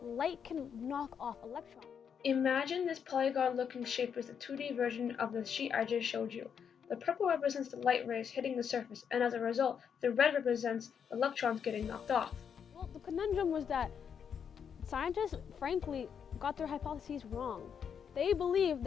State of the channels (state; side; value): quieter; right; 7.4 dB